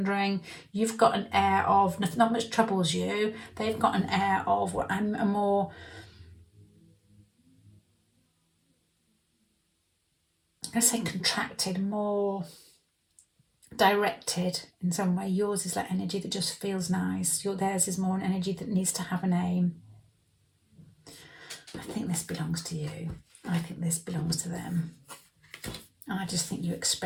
You've got an air of not much troubles you. They've got an air of I'm a more, I'm going to say contracted, more directed in some way. Yours is like energy that just feels nice. Theirs is more an energy that needs to have an aim. I think this belongs to you. I think this belongs to them. I just think you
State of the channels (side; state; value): both; identical; correlation 1.00